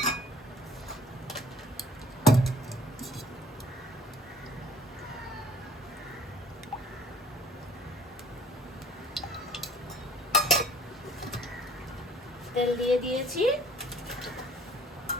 তেল দিয়ে দিয়েছি।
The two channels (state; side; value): normal; both; correlation 0.53